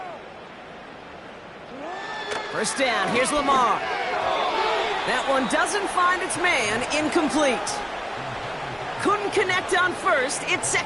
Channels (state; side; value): identical; both; correlation 1.00